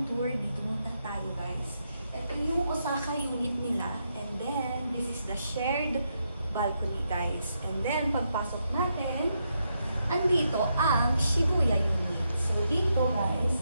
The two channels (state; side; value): inverted; both; correlation -0.81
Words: tour, dito muna tayo guys. Ito yung Osaka unit nila. And then, this is the shared balcony guys. And then, pagpasok natin, andito ang Shibuya unit. So dito guys,